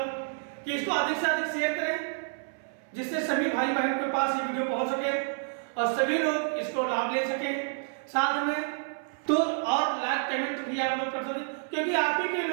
कि इसको अधिक से अधिक शेयर करें, जिससे सभी भाई बहन के पास ये वीडियो पहुंच सके और सभी लोग इसको लाभ ले सके। साथ में तो और लाइक कमेंट भी आप लोग कर सकते, क्योंकि आप ही के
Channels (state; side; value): silent; left; 58 dB below the other